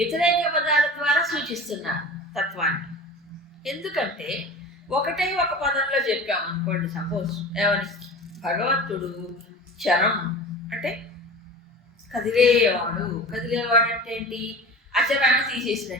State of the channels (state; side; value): normal; both; correlation 0.35